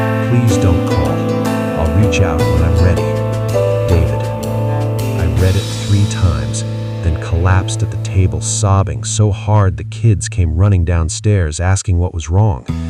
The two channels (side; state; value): both; identical; correlation 1.00